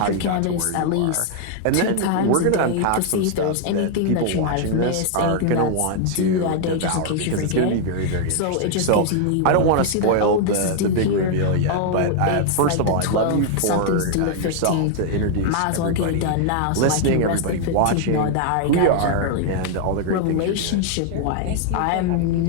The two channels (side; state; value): both; different; correlation 0.00